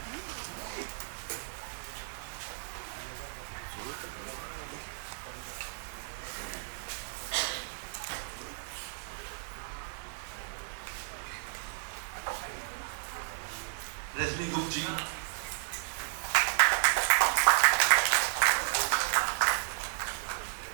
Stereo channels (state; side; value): silent; left; digital silence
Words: रजनी गुप्त जी,